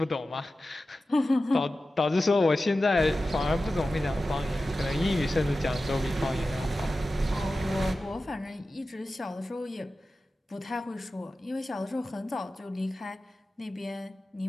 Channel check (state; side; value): normal; both; correlation 0.94